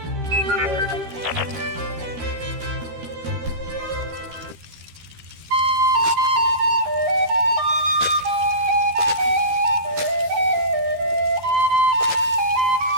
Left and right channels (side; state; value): left; late; 13 ms